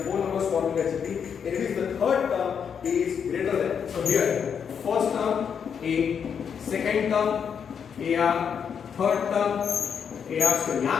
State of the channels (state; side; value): quieter; right; 7.2 dB